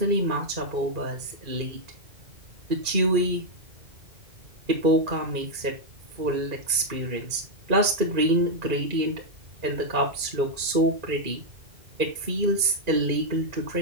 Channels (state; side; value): late; left; 2.4 ms